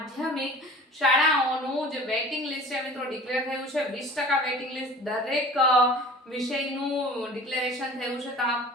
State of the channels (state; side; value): normal; both; correlation 0.43